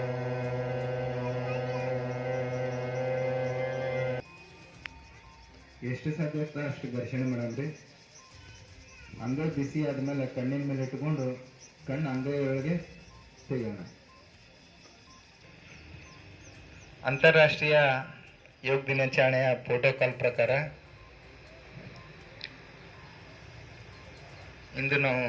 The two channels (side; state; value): both; identical; correlation 1.00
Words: ಎಷ್ಟು ಸಾಧ್ಯ ಅಷ್ಟು ಘರ್ಷಣೆ ಮಾಡಲ್ರಿ. ಅಂಗೈ ಬಿಸಿ ಆದ್ಮೇಲೆ ಕಣ್ಣಿನ ಮೇಲೆ ಇಟ್ಕೊಂಡು ಕಣ್ಣು ಅಂಗೈ ಒಳಗೆ ತೆಗೋಣ. ಅಂತಾರಾಷ್ಟ್ರೀಯ ಯೋಗ ದಿನಾಚರಣೆಯ ಪ್ರೋಟೋಕಾಲ್ ಪ್ರಕಾರ ಇಂದು ನಾವು